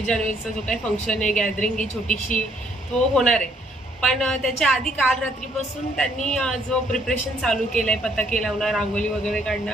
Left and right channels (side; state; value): both; normal; correlation 0.67